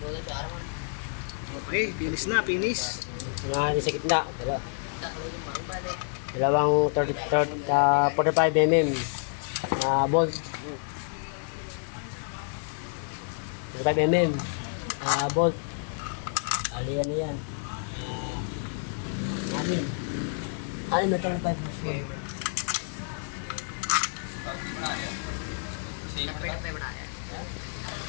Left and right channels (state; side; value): silent; right; digital silence